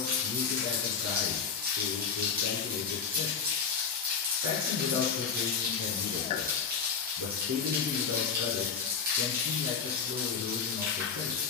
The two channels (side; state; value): right; quieter; 6.1 dB